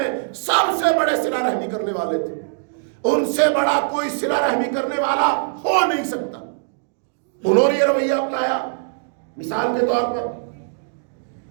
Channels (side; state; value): left; silent; digital silence